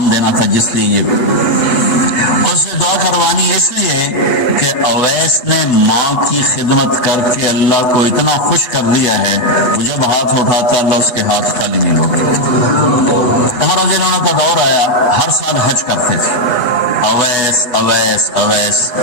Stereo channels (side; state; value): right; late; 8.1 ms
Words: دینا تھا، جس لیے یہ اس سے دعا کروانی اس لیے کہ اویس نے ماں کی خدمت کر کے اللہ کو اتنا خوش کر دیا ہے، وہ جب ہاتھ اٹھاتا اللہ اس کے ہاتھ خالی نہیں ہوتے۔ عمر رضی اللہ عنہ کا دور آیا، ہر سال حج کرتے تھے، اویس اویس اویس